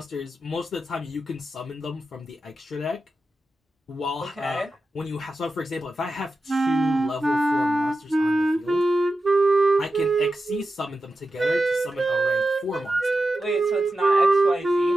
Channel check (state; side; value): normal; both; correlation 0.91